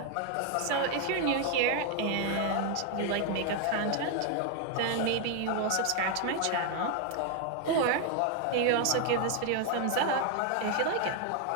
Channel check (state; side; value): different; both; correlation 0.00